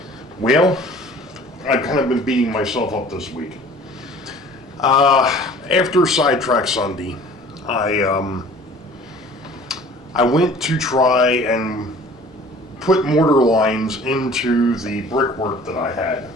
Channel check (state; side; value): normal; both; correlation 0.48